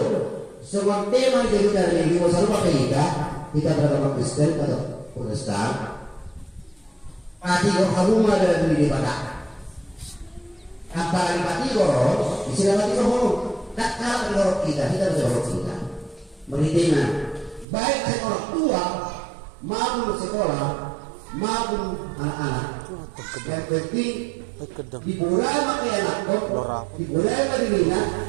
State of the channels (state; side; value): drops out; left; at 17.7 s